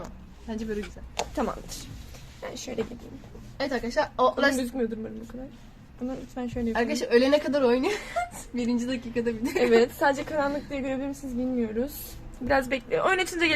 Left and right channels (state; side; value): identical; both; correlation 1.00